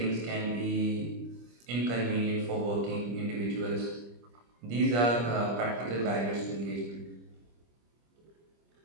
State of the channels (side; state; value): left; late; 25 ms